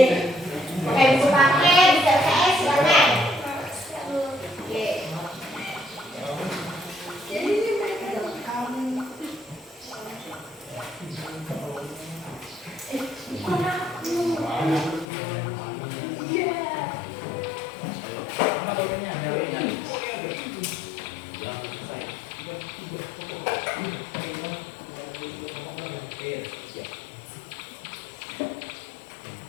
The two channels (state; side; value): drops out; right; at 15.1 s